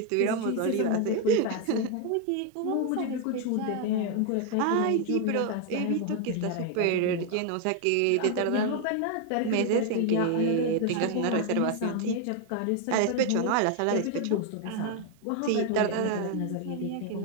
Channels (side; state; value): both; different; correlation 0.01